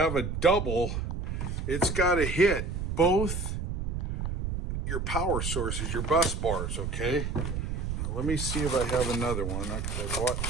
a double, it's gotta hit both your power sources, your bus bars, okay? Now, let me see if I have another one. I bought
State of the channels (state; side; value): noise; right; rumble, 3 dB below the sound